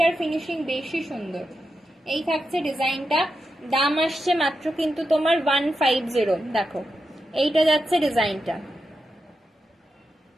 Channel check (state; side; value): normal; both; correlation 0.88